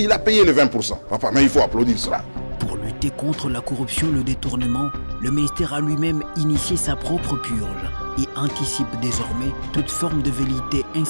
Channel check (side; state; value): both; inverted; correlation -1.00